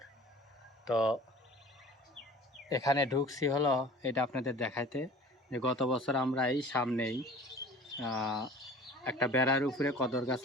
তো এখানে ঢুকছি হলো এটা আপনাদের দেখাইতে, যে গত বছর আমরা এই সামনেই একটা বেড়ার উপরে কদর গাছ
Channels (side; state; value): both; normal; correlation 0.44